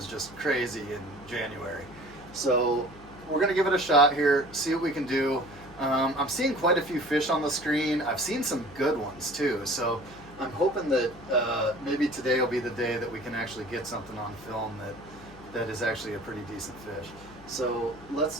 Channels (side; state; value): left; noise; hum, 22 dB below the sound